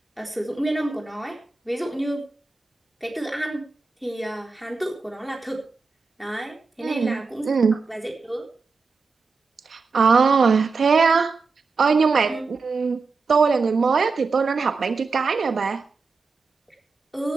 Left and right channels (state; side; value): quieter; left; 4.4 dB